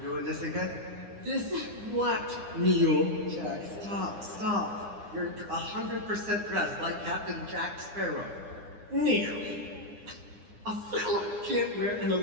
this again? This what, Neil? Jack, stop. You're 100% dressed like Captain Jack Sparrow. Neil, a fella can't wear an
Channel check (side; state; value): left; late; 9.8 ms